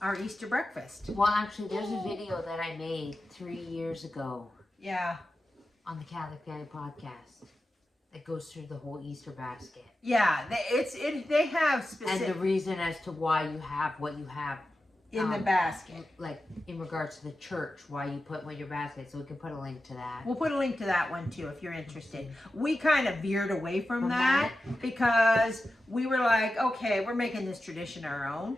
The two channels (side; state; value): both; normal; correlation 0.92